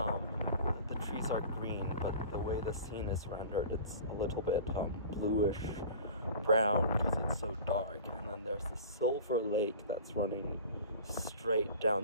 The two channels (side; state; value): both; inverted; correlation -0.40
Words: The trees are green, but the way the scene is rendered, it's a little bit bluish brown because it's so dark. And then there's the silver lake that's running straight